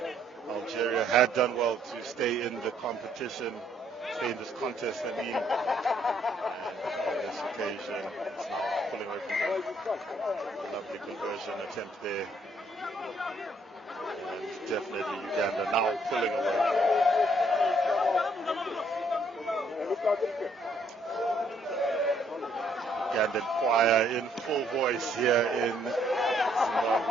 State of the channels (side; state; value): both; normal; correlation 0.68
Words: Algeria had done well to stay in the competition, stay in this contest, I mean, and on this occasion, it's now pulling away from them. A lovely conversion attempt there. And definitely Uganda now pulling away. Ugandan choir in full voice here in